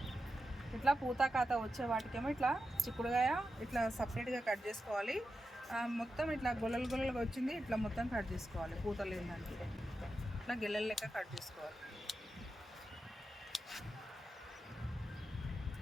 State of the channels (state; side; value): normal; both; correlation 0.89